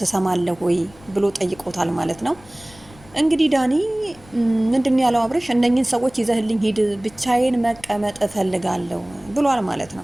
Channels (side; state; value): left; noise; rumble, 24 dB below the sound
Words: ትሰማለህ ወይ ብሎ ጠይቆታል ማለት ነው። እንግዲህ ዳኒ ምንድን ያለው አብርሽ እነኝን ሰዎች ይዘህልኝ ሂድ፣ ብቻዬን መቀመጥ እፈልጋለሁ ብሏል ማለት